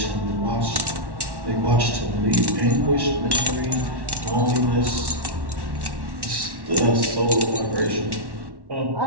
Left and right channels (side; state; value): left; late; 1.1 ms